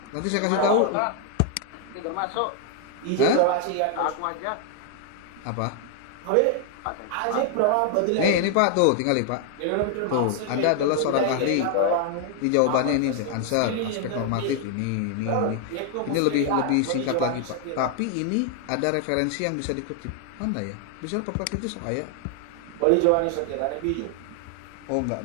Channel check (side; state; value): both; different; correlation 0.00